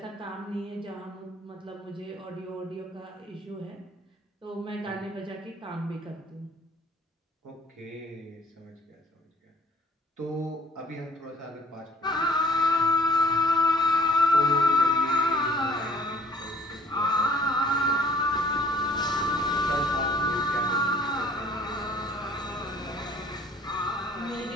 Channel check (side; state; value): both; normal; correlation 0.55